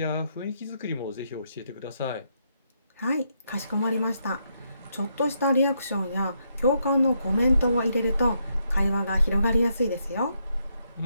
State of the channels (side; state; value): both; inverted; correlation -0.78